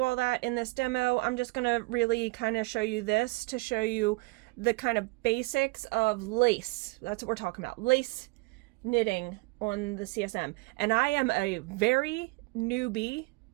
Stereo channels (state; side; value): quieter; left; 25.9 dB